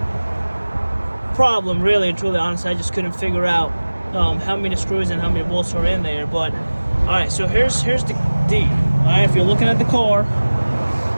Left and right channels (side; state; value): both; inverted; correlation -1.00